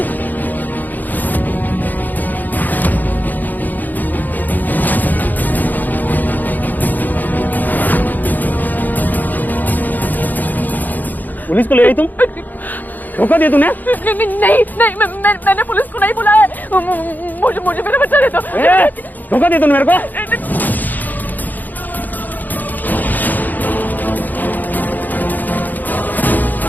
Police को ले आई तुम? धोखा दिया तूने? नहीं, मैंने पुलिस को नहीं बुलाया। मुझे मेरा बच्चा दे दो। धोखा दिया तूने मेरे को?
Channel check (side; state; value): right; late; 0.085 ms